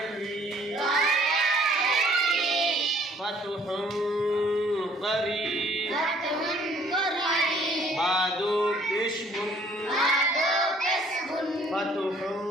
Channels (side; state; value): both; normal; correlation 0.59